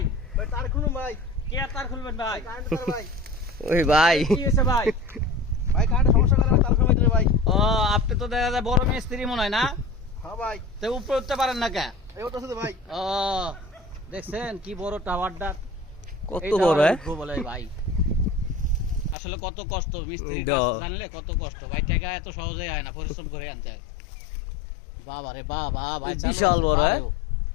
তার খুলুন ভাই। কে তার খুলবেন ভাই? ওই ভাই কি হয়েছে ভাই? ভাই কারেন্টের সমস্যা করে তার খুলবেন ভাই। ও আপনি তো দেখা যায় বড় মিস্ত্রি মনে হয় না? হ্যাঁ ভাই। তো উপরে উঠতে পারেন না কে? এই উঠতেছে তো ভাই। ও দেখছেন কি বড় টাওয়ারটা? কত বড় বলে ভাই। আসলে কত কষ্ট মিস্ত্রি জানলে কত কষ্ট ভাই। টাকা এত সহজে হয় না, পরিশ্রম করে আনতে হয়। বাবা রে বাবা ভাই, বিশাল বড়।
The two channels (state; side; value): drops out; right; at 19.2 s